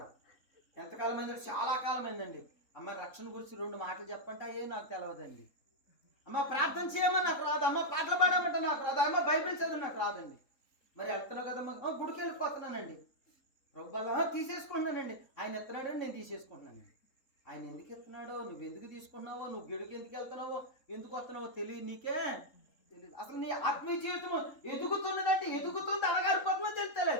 ఎంతకాలం అయిందండి? చాలా కాలం అయిందండి. అమ్మ రక్షణ గురించి 2 మాటలు చెప్పంటే అయ్యే నాకు తెలియదండి. అమ్మ ప్రార్థన చేయమని నాకు రాదు, అమ్మ పాటలు పాడమంటే నాకు రాదు, అమ్మ బైబిల్ చదివి నాకు రాదండి. మరి వెళ్తున్నావు కదమ్మా, గుడికి వెళ్ళిపోతున్నానండి. ప్రభు బల్ల తీసేసుకుంటున్నానండి. ఆయన ఎత్తున్నాడని నేను తీసేసుకుంటున్నానండి. ఆయన ఎందుకు ఎత్తున్నాడో, నువ్వు ఎందుకు తీసుకున్నావో, నువ్వు గిడికి ఎందుకు వెళ్తున్నావో, ఎందుకు వస్తున్నావో తెలియదు, నీకే తెలియదు. అసలు నీ ఆత్మీయ జీవితం ఎదుగుతున్నదంటే ఎదుగుతుంది, అడగారిపోతుందో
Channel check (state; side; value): late; right; 3.8 ms